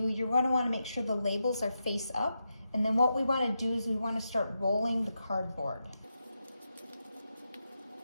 you're going to want to make sure the labels are face up. And then what we want to do is we want to start rolling the cardboard.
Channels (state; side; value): inverted; both; correlation -0.87